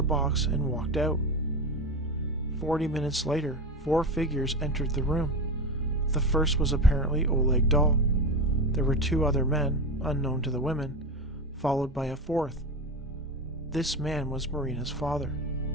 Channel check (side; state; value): both; normal; correlation 0.20